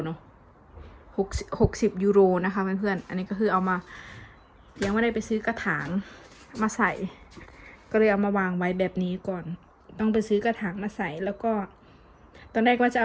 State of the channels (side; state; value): both; identical; correlation 1.00